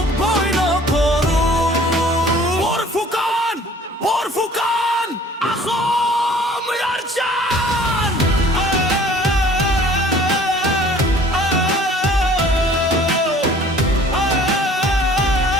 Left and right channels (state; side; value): normal; both; correlation 0.52